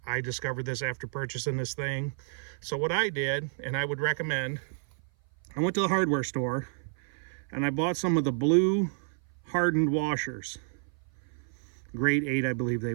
I discovered this after purchasing this thing. So what I did, and I would recommend, I went to the hardware store and I bought some of the blue hardened washers, grade 8 I believe they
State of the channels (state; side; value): silent; left; 56 dB below the other